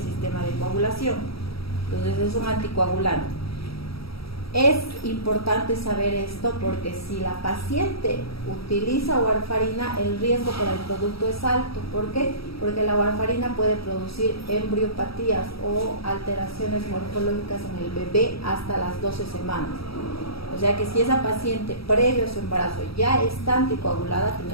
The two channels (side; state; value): right; late; 0.76 ms